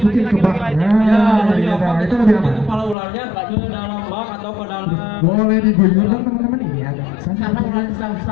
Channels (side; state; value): right; drops out; at 3.0 s